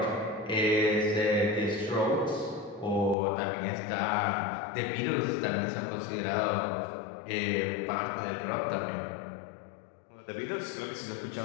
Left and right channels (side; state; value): right; drops out; at 3.2 s